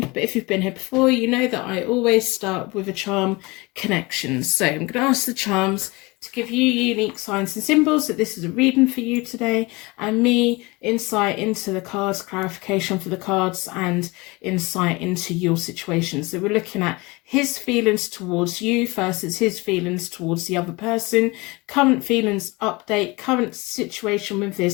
But if you've been here before, you know that I always start with a charm connection. So I'm going to ask the charms to give you unique signs and symbols that this is a reading for you today, and me insight into the cards, clarification for the cards, and insight into your situation. So we're looking at his feelings towards you versus his feelings towards the other person, current feelings update, current situation with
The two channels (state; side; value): quieter; right; 24.4 dB